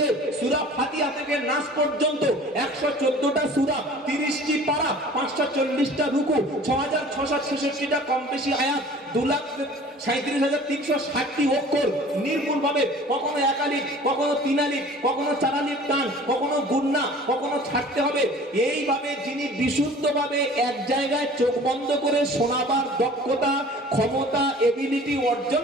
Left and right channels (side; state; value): both; normal; correlation 0.46